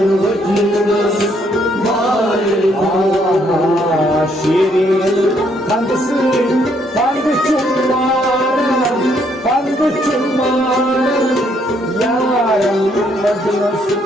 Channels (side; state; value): both; normal; correlation 0.70